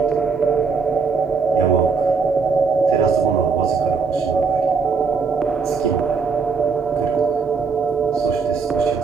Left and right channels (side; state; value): left; quieter; 5.2 dB